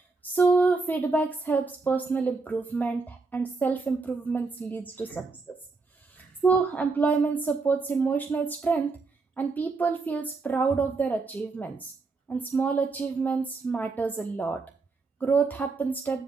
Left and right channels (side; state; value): left; quieter; 4.1 dB